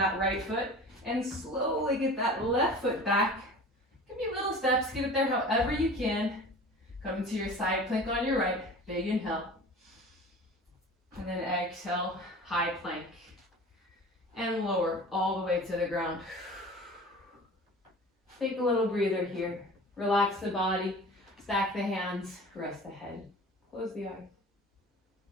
right foot and slowly get that left foot back. Give me little steps. Get it there however you can. Come into your side plank on your right. Big inhale. And then exhale, high plank. And lower all the way to the ground. Take a little breather here. Relax the body. Stack the hands. Rest the head. Close the eyes.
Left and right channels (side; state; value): both; normal; correlation 0.40